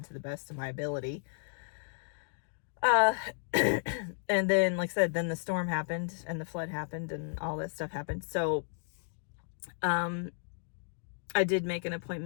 to the best of my ability. And then, like I said, then the storm happened and the flood happened and all that stuff happened. So I did make an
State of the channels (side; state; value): right; silent; digital silence